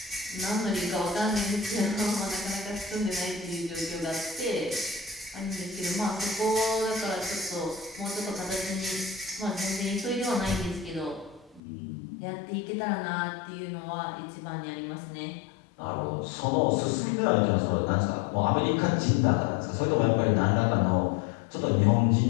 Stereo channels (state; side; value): drops out; right; at 11.6 s